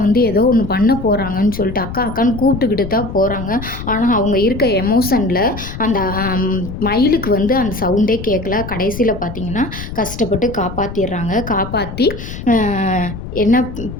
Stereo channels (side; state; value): left; noise; rumble, 9 dB below the sound